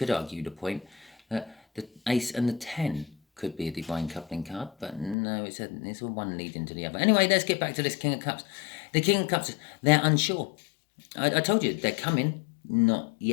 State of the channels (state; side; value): drops out; right; at 5.2 s